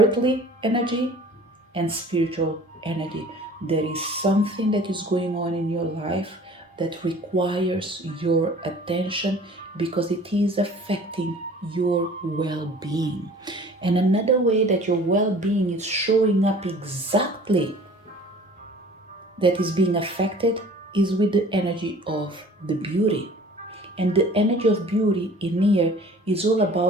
energy and spiritual energy. There is something that is going on in your life that requires your attention because it is affecting your well being. And another way that your well being is showing up exactly that is being affected is with the energy of the beauty. And the energy of beauty in here is all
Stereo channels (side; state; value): both; normal; correlation 0.47